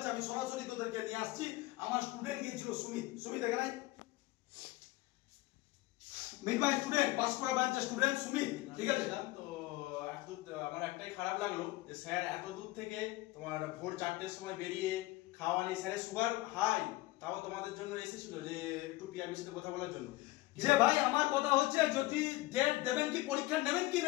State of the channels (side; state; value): right; quieter; 19.3 dB